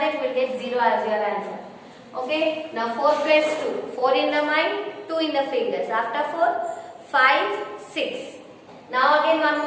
we will get 0 as your answer. Okay. Now 4 plus 2, 4 in the mind, 2 in the fingers. After 4, 5, 6. Now again one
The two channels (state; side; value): identical; both; correlation 1.00